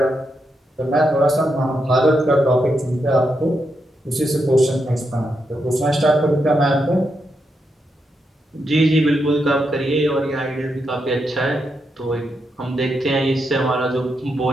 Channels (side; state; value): both; normal; correlation 0.83